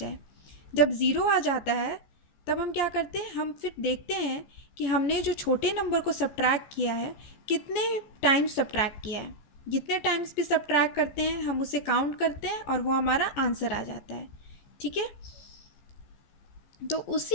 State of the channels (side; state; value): right; late; 14 ms